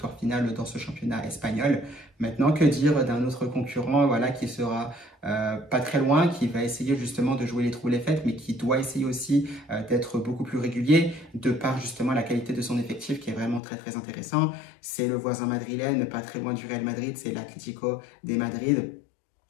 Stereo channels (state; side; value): drops out; right; at 13.6 s